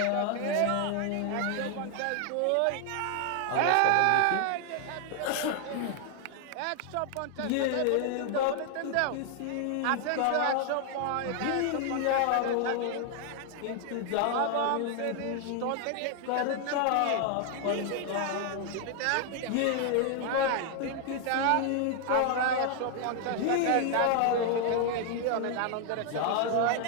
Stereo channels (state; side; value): different; both; correlation 0.00